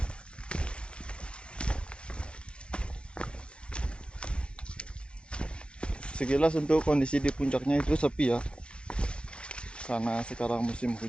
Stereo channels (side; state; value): right; late; 0.056 ms